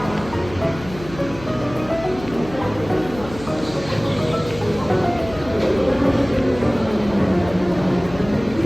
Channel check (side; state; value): left; noise; hum, 15 dB below the sound